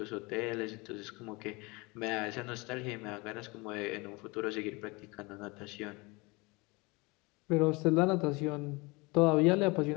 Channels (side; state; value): right; quieter; 25.8 dB